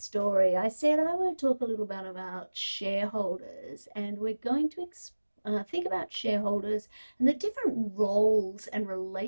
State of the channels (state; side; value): inverted; both; correlation -1.00